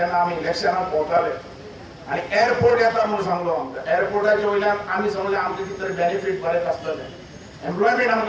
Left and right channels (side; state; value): both; identical; correlation 1.00